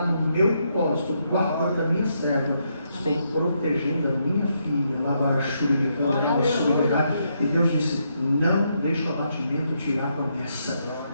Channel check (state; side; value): inverted; both; correlation -0.78